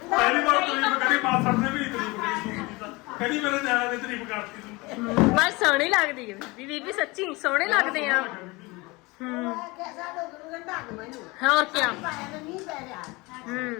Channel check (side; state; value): right; quieter; 24.0 dB